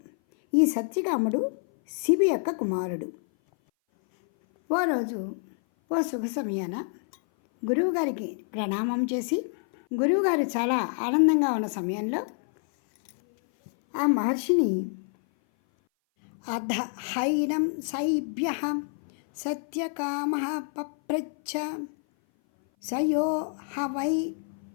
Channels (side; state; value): right; silent; 57 dB below the other